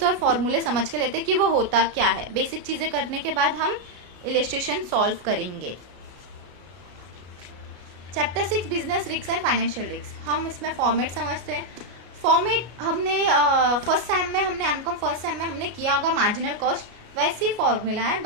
और फॉर्मूले समझ के लेते हैं कि वो होता क्या है। बेसिक चीजें करने के बाद हम इलस्ट्रेशन सॉल्व करेंगे। Chapter 6 business risk and financial risk. हम इसमें फॉर्मेट समझते हैं। फॉर्मेट हमने फर्स्ट सेम में एमकॉम फर्स्ट सेम में हमने किया होगा मार्जिनल कॉस्ट, वैसी फॉर्मूला है,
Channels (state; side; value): late; left; 33 ms